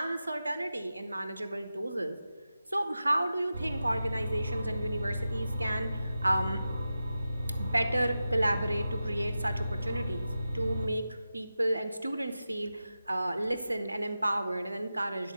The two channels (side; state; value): both; inverted; correlation -0.92